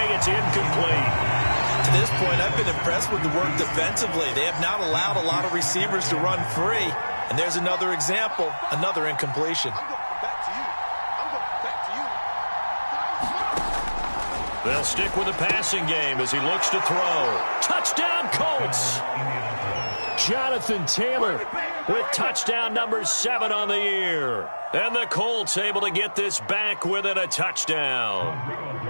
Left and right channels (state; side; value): inverted; both; correlation -1.00